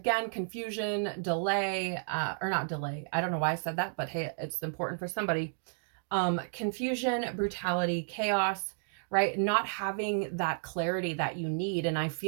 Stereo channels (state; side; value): silent; left; digital silence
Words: confusion, delay, or not delay. I don't know why I said that, but hey, it's important for somebody. Confusion, brutality, chaos, right? Not having that clarity that you need. And I